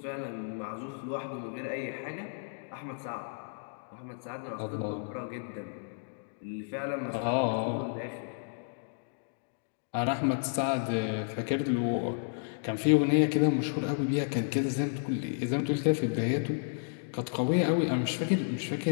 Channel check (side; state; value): right; silent; digital silence